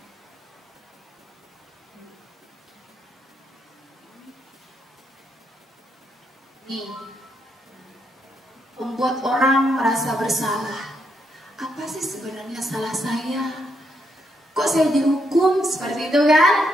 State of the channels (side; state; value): both; normal; correlation 0.78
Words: Nih, membuat orang merasa bersalah. Apa sih sebenarnya salah saya? Kok saya dihukum seperti itu kan?